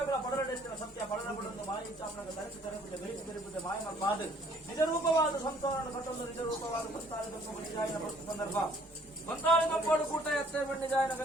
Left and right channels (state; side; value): normal; both; correlation 0.59